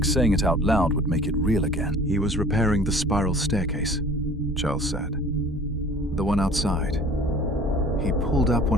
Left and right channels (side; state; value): both; normal; correlation 0.48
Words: saying it out loud would make it real again. He was repairing the spiral staircase, Charles said. The one outside. He pulled up